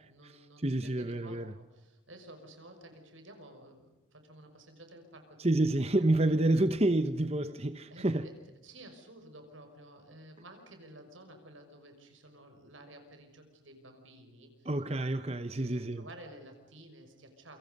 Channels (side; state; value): both; normal; correlation 0.80